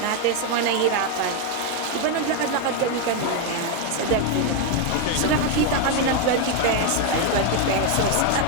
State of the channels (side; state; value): both; different; correlation 0.01